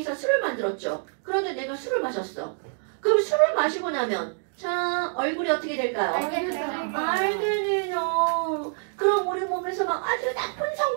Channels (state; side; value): silent; left; 61 dB below the other